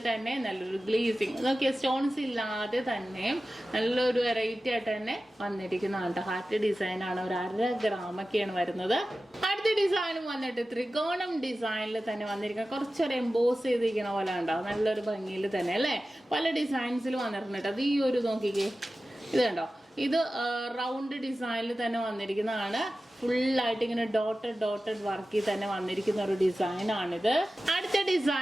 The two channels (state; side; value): normal; both; correlation 0.95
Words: തന്നെ നല്ലൊരു ഗ്ലേസിങ്, നോക്കിയ സ്റ്റോൺസ് ഇല്ലാതെ തന്നെ നല്ലൊരു വെറൈറ്റി ആയിട്ട് തന്നെ വന്നിരിക്കുന്നതാണ്. ഹാർട്ട് ഡിസൈൻ ആണ്, ഒരു 1/2 ഗ്രാമൊക്കെയാണ് വരുന്നത്. അടുത്ത ഡിസൈനും വന്നിട്ട് ത്രികോണം ഡിസൈനിൽ തന്നെ വന്നിരിക്കുന്ന കുറച്ചൊരു എംബോസ് ചെയ്തിരിക്കുന്ന പോലെ ഉണ്ടാവും. നല്ലൊരു ഭംഗിയിൽ തന്നെ അല്ലേ. പല ഡിസൈൻസിൽ വന്നിട്ടുണ്ട്. അത് ഈ ഒരു നോക്കിക്കേ, ഇത് കണ്ടോ, ഇത് റൗണ്ട് ഡിസൈനിൽ തന്നെ വന്നിരിക്കുന്നതാണ്. ഫുള്ളായിട്ട് ഇങ്ങനെ ഡോട്ടഡ് വർക്കിൽ തന്നെ വന്നിരിക്കുന്ന ഒരു ഡിസൈൻ ആണിത്. അടുത്ത